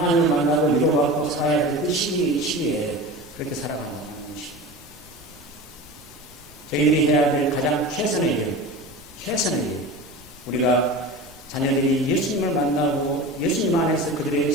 만나고 위로받고 살아야 될 그 시기에 그렇게 살아가는 것입니다. 저희들이 해야 될 가장 최선의 일, 우리가 자녀들이 예수님을 만나고 예수님 안에서 그들의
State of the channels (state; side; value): noise; left; rumble, 23 dB below the sound